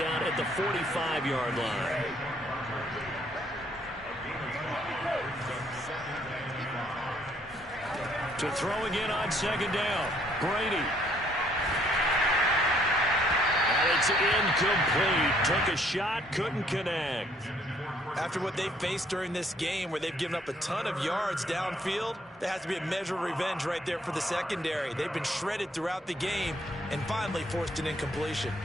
at the 45-yard line. To throw again on 2nd down. Brady. And it's incomplete. Took a shot, couldn't connect. After what they've faced during this game where they've given up a ton of yards downfield, there has to be a measure of revenge right there for the secondary. They've been shredded throughout the game and finally forced an incompletion.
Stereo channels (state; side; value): normal; both; correlation 0.65